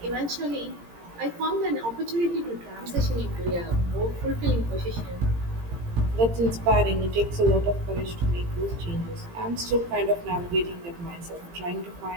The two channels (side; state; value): left; late; 17 ms